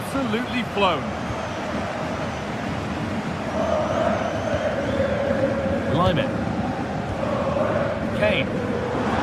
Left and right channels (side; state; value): both; identical; correlation 1.00